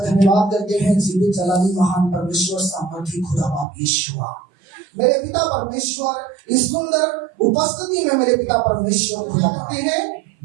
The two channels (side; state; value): left; drops out; at 3.7 s